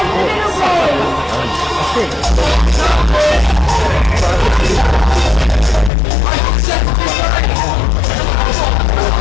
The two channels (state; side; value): drops out; right; at 5.9 s